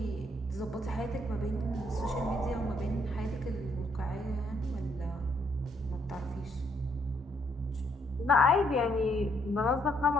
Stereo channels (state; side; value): normal; both; correlation 0.71